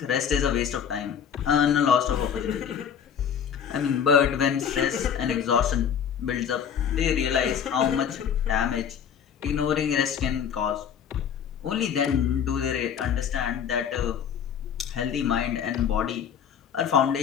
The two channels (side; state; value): right; quieter; 8.0 dB